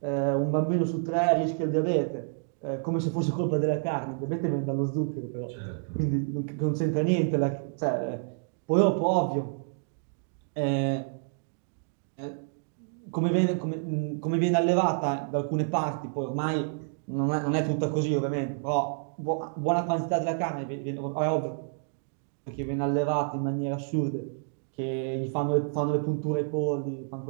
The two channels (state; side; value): silent; left; digital silence